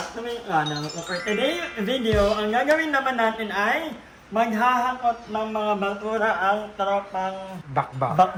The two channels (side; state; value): both; identical; correlation 1.00